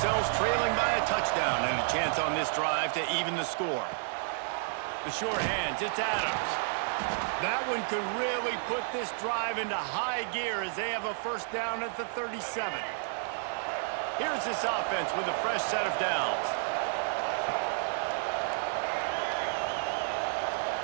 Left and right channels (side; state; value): left; silent; digital silence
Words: trailing by a touchdown and a chance on this drive to even the score. The short hands, it's Adams. That one could really put this drive into high gear as they have a first down at the 37. Here's this offense with a fresh set of downs.